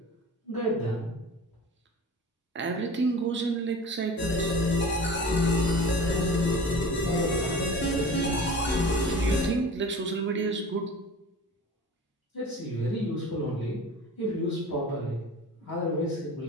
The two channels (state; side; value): normal; both; correlation 0.39